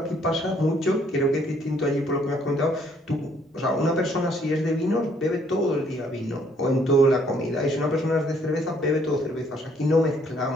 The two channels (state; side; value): normal; both; correlation 0.65